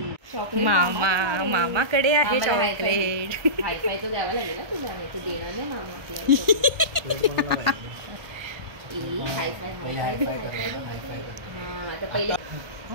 मामा मामाकडे आहे चॉकलेट. हायफाय तो द्यावा लागेल ना तुला. नाही तू देणार नाही मामा.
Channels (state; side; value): late; left; 1.2 ms